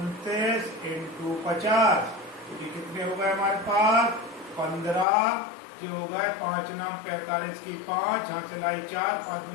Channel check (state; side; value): drops out; right; at 5.1 s